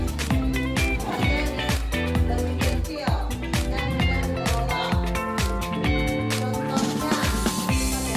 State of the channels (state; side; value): identical; both; correlation 1.00